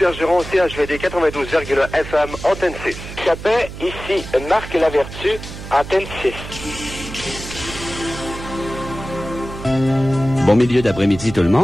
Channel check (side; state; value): right; noise; hum, 11 dB below the sound